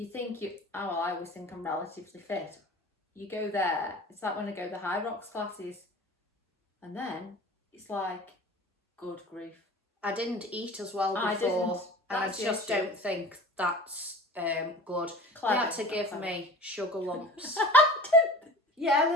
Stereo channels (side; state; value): both; normal; correlation 0.38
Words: always think I'm relatively fit. You go there, it's like when I go the high rocks classes, and then it's like, good grief. I didn't eat as well before, and I just don't think that's good. Clever. They had to give me sugar lumps.